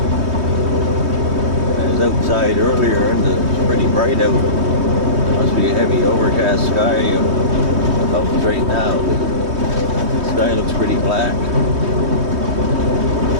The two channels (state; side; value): late; left; 3.2 ms